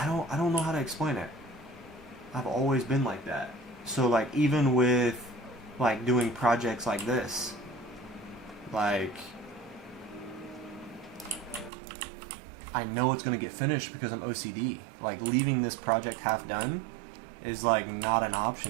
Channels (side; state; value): left; drops out; at 11.7 s